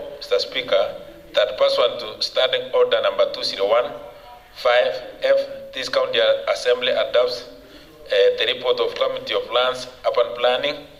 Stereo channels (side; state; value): both; identical; correlation 1.00